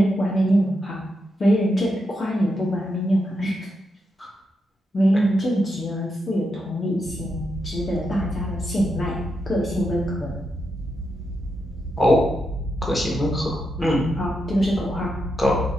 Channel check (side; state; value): both; normal; correlation 0.84